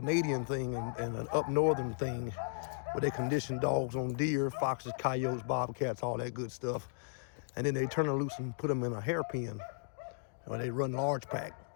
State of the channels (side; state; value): right; silent; digital silence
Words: thing and an up northern thing where they condition dogs on deer, foxes, coyotes, bobcats, all that good stuff. And then they turn them loose and put them in a hairpin, or they run large pack.